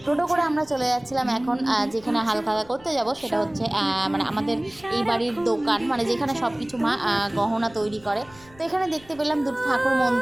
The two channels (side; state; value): left; noise; rumble, 24 dB below the sound